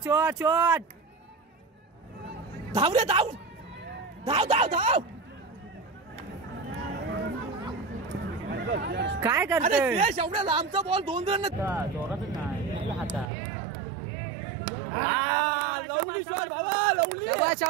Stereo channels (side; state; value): left; drops out; at 13.3 s